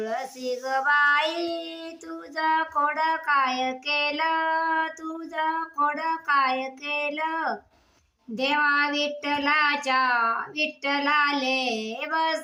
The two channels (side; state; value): both; identical; correlation 1.00